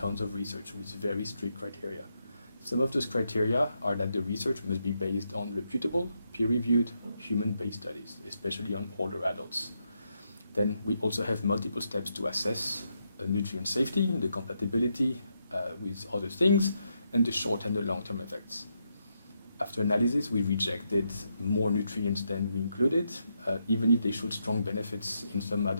of research with very strict criteria. Some of those criteria are that the research must be based on reputable, peer-reviewed, human-based studies, especially on older adults. Then we also have multiple steps to assess nutrient safety, the compatibility with other things, and the short and the long-term effects. After analysis, we rejected more nutrients than we included, even if they showed strong benefits in some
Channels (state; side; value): inverted; both; correlation -0.81